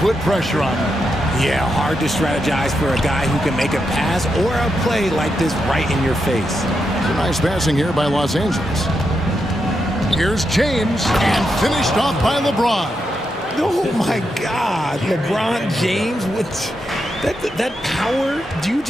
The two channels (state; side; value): normal; both; correlation 0.84